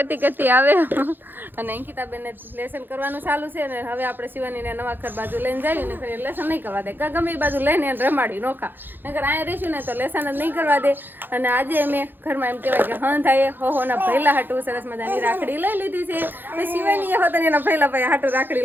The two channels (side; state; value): left; late; 0.094 ms